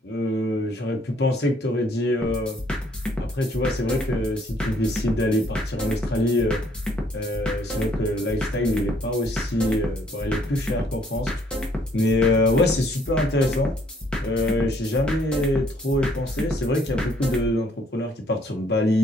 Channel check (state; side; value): normal; both; correlation 0.64